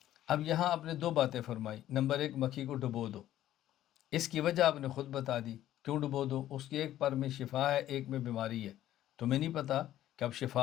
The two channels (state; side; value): quieter; right; 12.9 dB